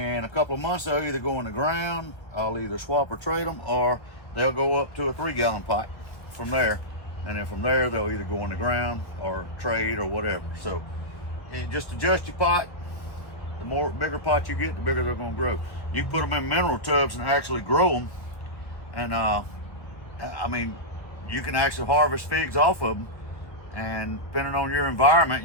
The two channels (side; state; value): right; late; 1.6 ms